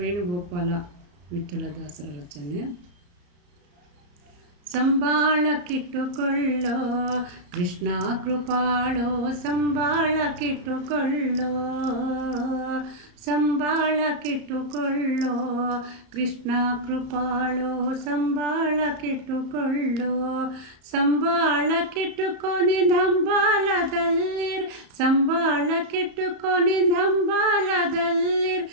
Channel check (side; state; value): left; late; 34 ms